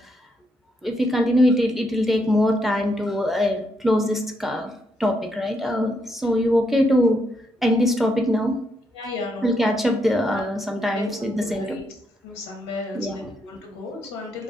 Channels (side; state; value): both; normal; correlation 0.78